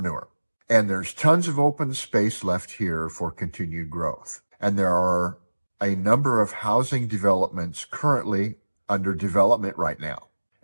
newer. And there's tons of open space left here for continued growth. And there are a number of housing developments currently under development right now.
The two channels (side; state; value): both; inverted; correlation -1.00